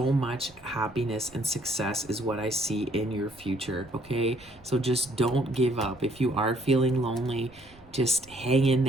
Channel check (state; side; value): noise; right; rumble, 26 dB below the sound